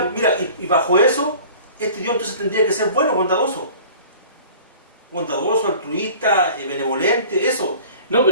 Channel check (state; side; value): inverted; both; correlation -0.45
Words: mira, y bajo eso, este Dios entonces tendría que ser bueno, bondadoso. Bondadoso, altruista, benevolente, eso. No,